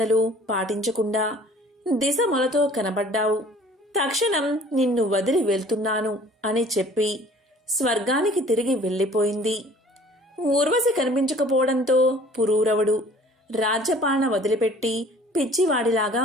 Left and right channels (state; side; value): normal; both; correlation 0.51